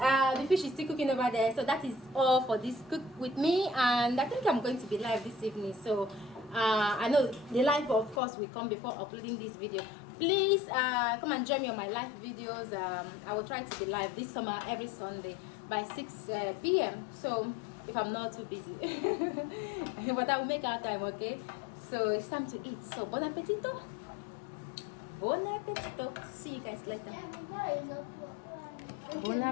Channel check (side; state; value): right; drops out; at 8.2 s